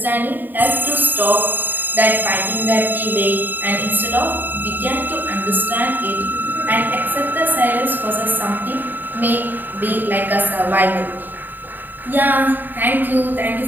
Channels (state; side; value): late; left; 0.090 ms